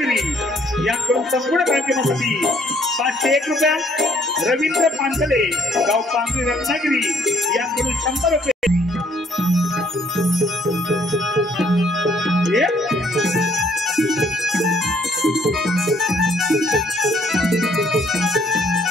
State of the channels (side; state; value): both; normal; correlation 0.65